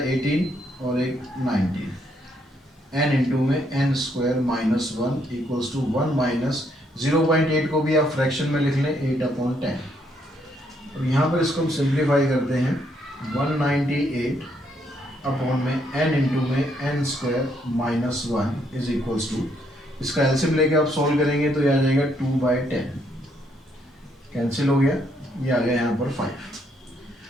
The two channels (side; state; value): both; normal; correlation 0.72